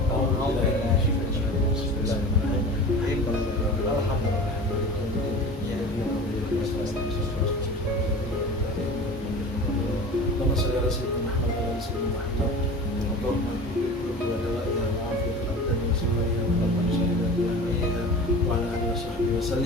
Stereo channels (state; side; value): normal; both; correlation 0.36